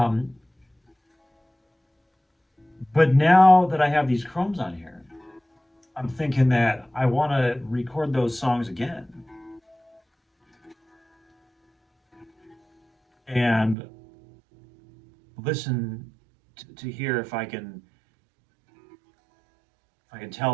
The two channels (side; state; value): left; drops out; at 13.8 s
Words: but now that I have these chromes on here, I'm thinking that I want to record those songs again and listen to hear if I can